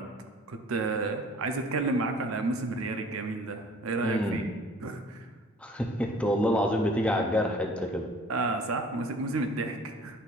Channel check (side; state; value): both; normal; correlation 0.50